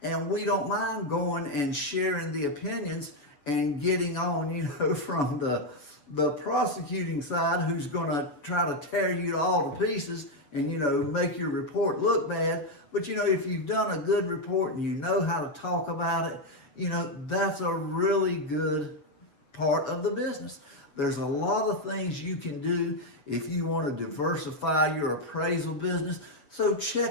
and we don't mind going and sharing the opinions and getting on, from the prosecuting side, who's going to try to tear you all to pieces and, make your report look bad. But, if you've done a good report and you know how to talk about it, that's a really good part of the business. There's a lot of things you can do if you want to diversify your appraisal business. So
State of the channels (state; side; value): late; right; 7.1 ms